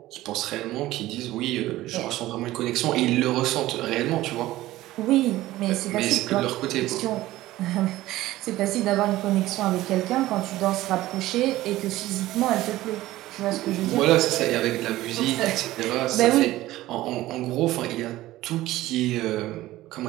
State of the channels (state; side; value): quieter; left; 16.3 dB